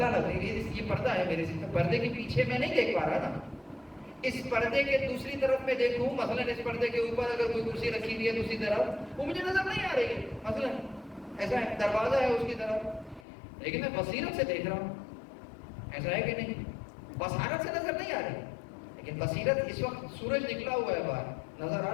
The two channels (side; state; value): right; drops out; at 13.2 s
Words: لگ رہی ہے، یہ پردہ ہے میرے سے، پردے کے پیچھے میں نہیں دیکھ پا رہا نا. اس پردے کے دوسری طرف میں دیکھوں، مثلا اس پردے کے اوپر اگر کوئی کرسی رکھی ہوئی ہے دوسری طرف، وہ مجھے نظر نہیں آ رہی ہے. مثلا ایسا ہے، دروازہ ہے اس کی طرف، لیکن میں بصیرت سے دیکھ رہا ہوں. ایسا ہے کہ نہیں؟ بصارت سے نظر نہیں آ رہی، لیکن بصیرت. اس وقت سورج نکلا ہوا ہے باہر، نظر آ